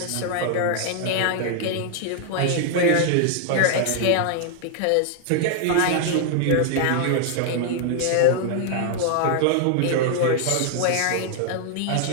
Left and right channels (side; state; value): both; different; correlation 0.00